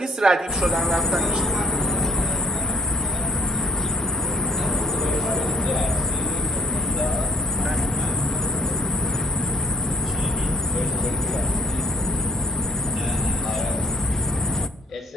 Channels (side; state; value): both; normal; correlation 0.58